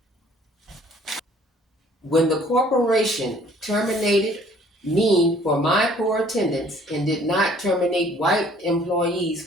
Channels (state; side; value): normal; both; correlation 0.57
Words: When the corporation terminated me for my poor attendance and did not terminate white employees